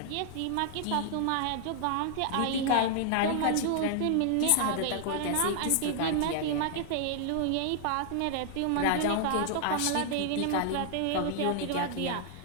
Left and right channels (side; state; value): both; different; correlation 0.00